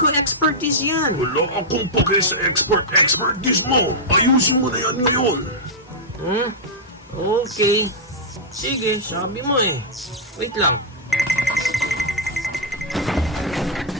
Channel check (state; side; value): normal; both; correlation -0.07